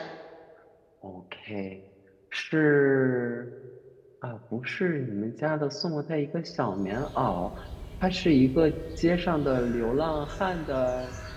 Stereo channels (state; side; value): identical; both; correlation 1.00